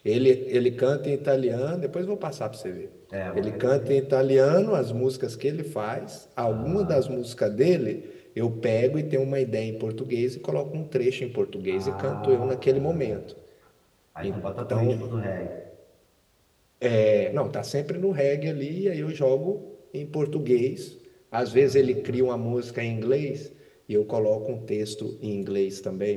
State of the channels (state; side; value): identical; both; correlation 1.00